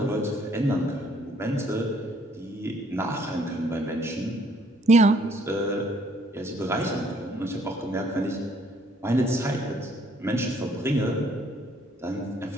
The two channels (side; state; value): both; normal; correlation 0.64